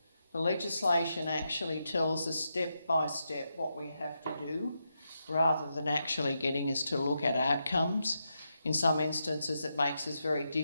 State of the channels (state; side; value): inverted; both; correlation -0.85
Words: The legislation actually tells us step by step what we have to do, rather than actually getting us to look at outcomes. In some instances, it makes it very